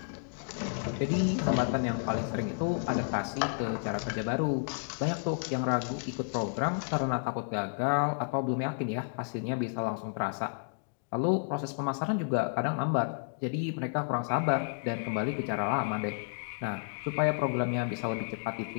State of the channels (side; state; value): right; silent; digital silence